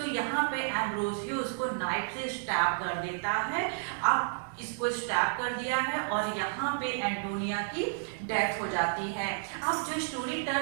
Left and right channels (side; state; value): left; silent; digital silence